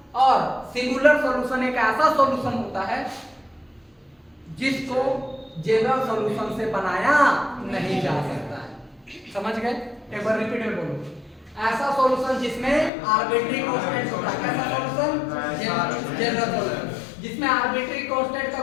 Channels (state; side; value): drops out; right; at 12.9 s